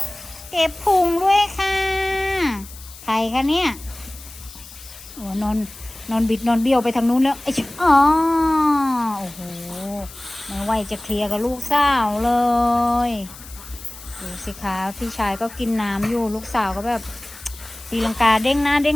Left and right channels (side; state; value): left; noise; hiss, 17 dB below the sound